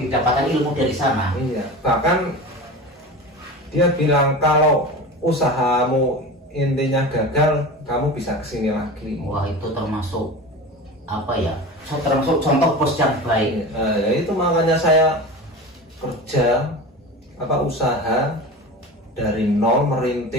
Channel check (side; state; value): both; normal; correlation 0.31